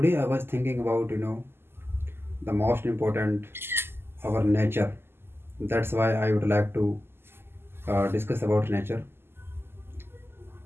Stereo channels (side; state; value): left; late; 0.11 ms